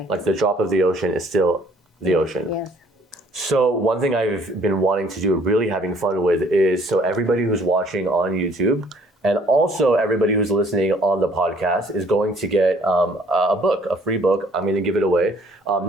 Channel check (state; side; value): normal; both; correlation 0.59